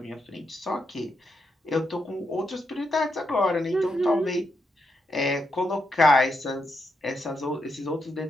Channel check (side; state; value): both; normal; correlation 0.82